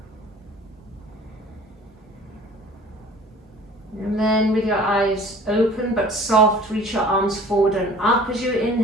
And then with your eyes open but soft, reach your arms forward and up as you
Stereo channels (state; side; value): normal; both; correlation 0.47